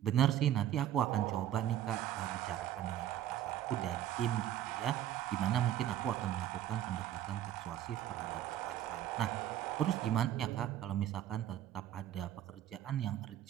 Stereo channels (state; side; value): quieter; left; 11.6 dB